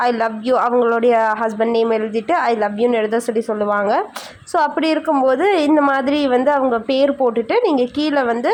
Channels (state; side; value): identical; both; correlation 1.00